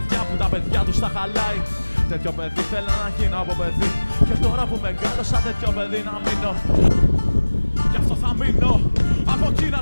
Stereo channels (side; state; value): both; inverted; correlation -1.00